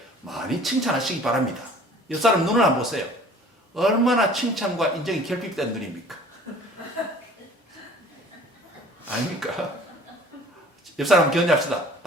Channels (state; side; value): normal; both; correlation 0.49